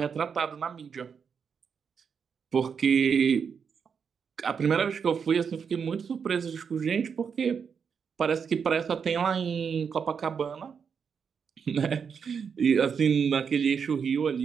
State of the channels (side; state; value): left; quieter; 6.5 dB